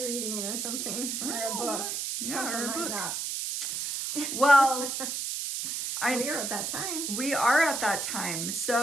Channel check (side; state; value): right; noise; hiss, 3 dB below the sound